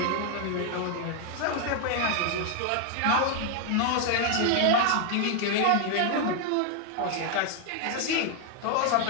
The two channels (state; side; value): different; both; correlation 0.00